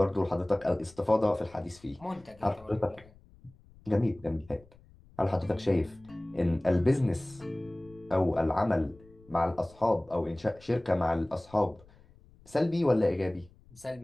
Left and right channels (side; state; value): left; noise; rumble, 26 dB below the sound